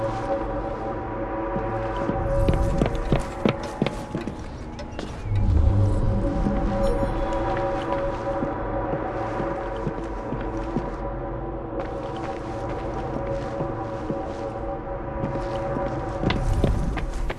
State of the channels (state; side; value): identical; both; correlation 1.00